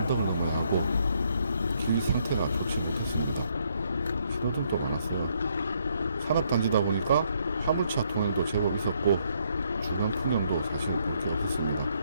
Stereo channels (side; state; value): both; inverted; correlation -0.72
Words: 넘어야 하고 길 상태가 좋지 못했습니다. 신호등도 많았어요. 산업단지다 보니까 화물차 통행도 제법 있었고 주변 풍경도 사실 볼 게 없었습니다.